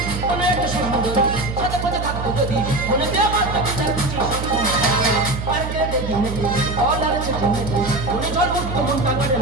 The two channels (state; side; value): noise; right; hum, 6 dB below the sound